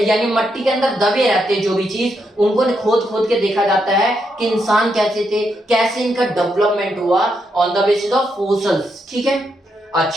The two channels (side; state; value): both; normal; correlation 0.80